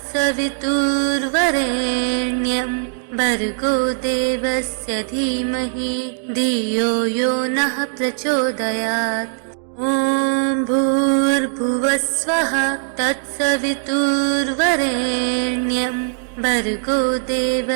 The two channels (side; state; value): left; silent; 62 dB below the other